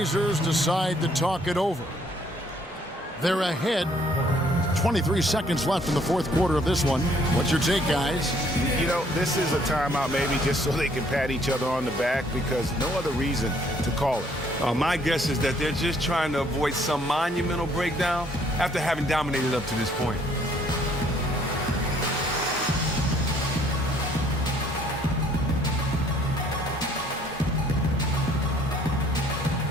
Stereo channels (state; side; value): normal; both; correlation 0.63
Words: decide to talk it over. They're ahead. 23 seconds left in the fourth quarter of this one. What's your take, guys? You know, this is a timeout maybe just so they can pat each other on the back because no other reason to call it. My guess is that they're just trying to avoid some monumental breakdown after having dominated up to this point.